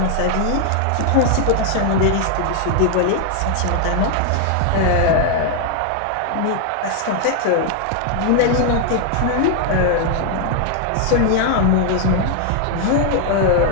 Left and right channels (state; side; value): different; both; correlation 0.00